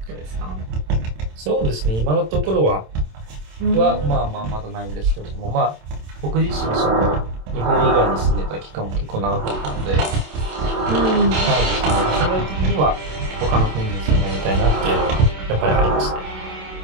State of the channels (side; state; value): left; late; 27 ms